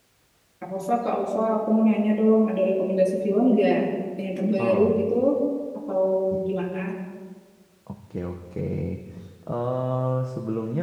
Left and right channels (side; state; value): both; identical; correlation 1.00